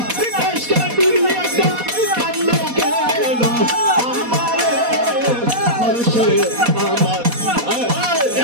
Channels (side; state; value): left; late; 4.2 ms